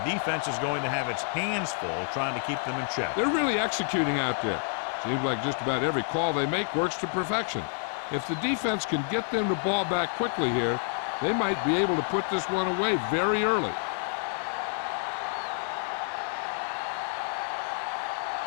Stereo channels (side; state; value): right; silent; 56 dB below the other